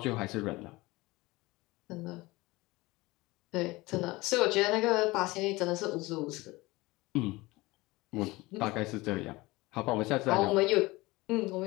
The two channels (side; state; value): right; quieter; 21.3 dB